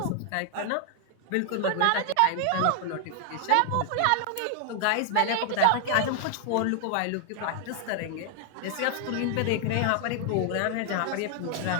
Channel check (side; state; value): both; different; correlation 0.00